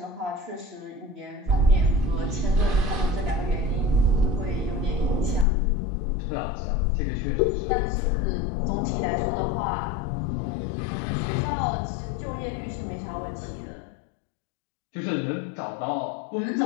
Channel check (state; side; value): drops out; right; at 5.5 s